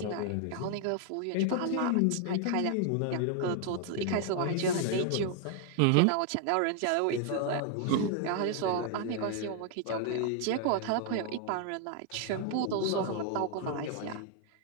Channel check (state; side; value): different; both; correlation 0.00